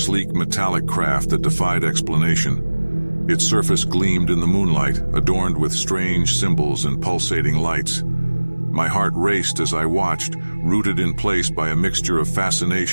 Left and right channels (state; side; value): inverted; both; correlation -1.00